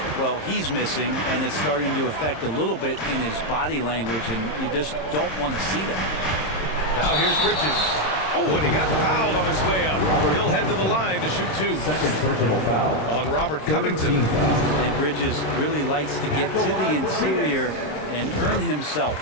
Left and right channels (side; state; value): right; late; 26 ms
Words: Well, he's missing, and it's starting to affect a little bit in his body language, and you just don't want to see that. Now here's Bridges. Oh, and he got fouled on his way up. He'll head to the line to shoot 2. Second personal foul on Robert Covington. And Bridges really likes to get to the interior and earn himself